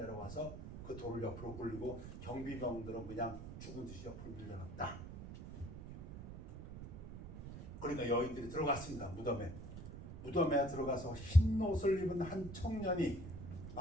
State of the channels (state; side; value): noise; right; rumble, 10 dB below the sound